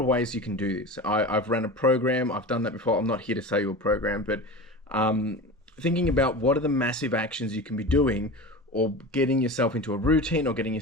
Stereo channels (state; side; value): normal; both; correlation 0.30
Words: ways you can do this. I've run a program. I've done that before. I'm not here to sell you a program, but thinking about what are the massive actions you can be doing, or getting yourself into a routine, or getting